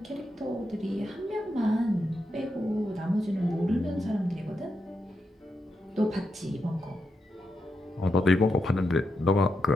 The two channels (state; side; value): normal; both; correlation 0.85